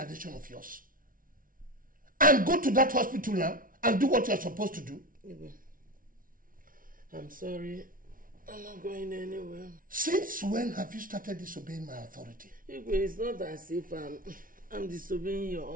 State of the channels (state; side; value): late; left; 0.40 ms